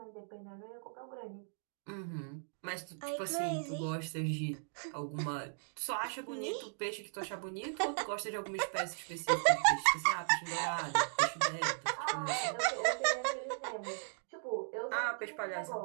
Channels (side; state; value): left; silent; digital silence